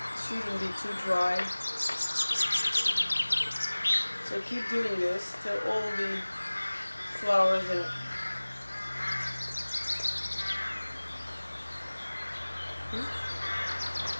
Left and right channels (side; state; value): both; inverted; correlation -1.00